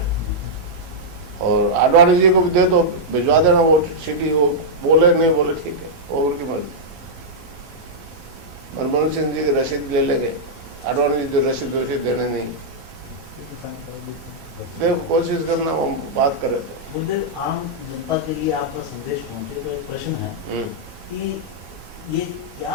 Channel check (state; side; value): late; left; 1.3 ms